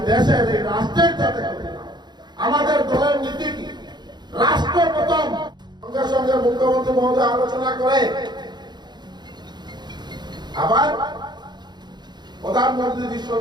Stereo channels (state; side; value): late; left; 0.21 ms